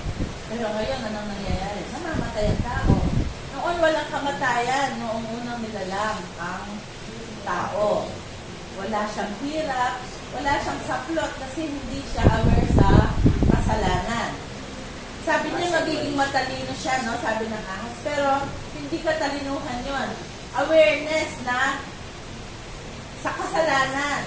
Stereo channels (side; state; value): both; identical; correlation 1.00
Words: Pero ngayon, anong nangyayari? Namamatay ang tao. Noon, walang kamatayan. Noong unang nilalang ang tao. Wala siyang hirap, wala siyang saplot kasi hindi siya aware sa kasalanan. Sabi niya magiging matalino siya, no? Sabi ng ahas. Pero hindi katalinuhan yon. Awareness na sa kasalanan.